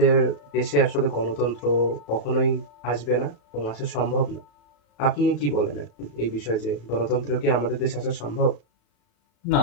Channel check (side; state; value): right; late; 34 ms